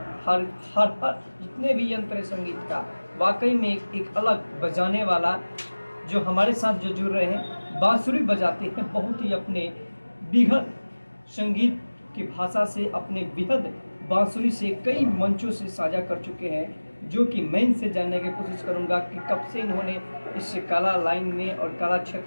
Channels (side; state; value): both; inverted; correlation -1.00